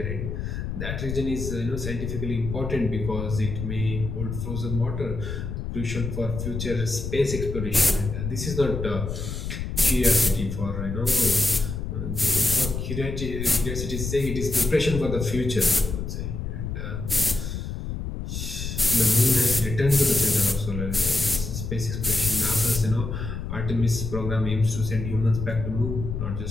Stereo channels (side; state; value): left; noise; rumble, 5 dB below the sound